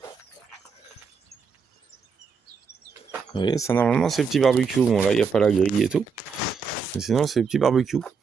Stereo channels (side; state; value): left; quieter; 5.6 dB